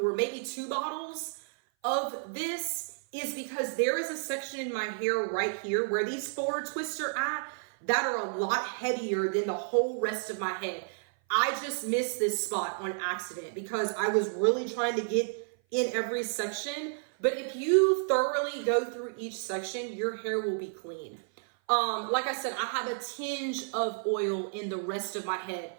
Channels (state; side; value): silent; left; 55 dB below the other